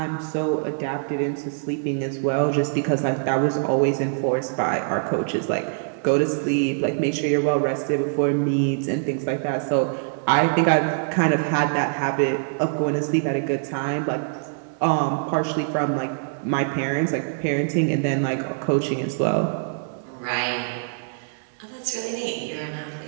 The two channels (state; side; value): silent; left; digital silence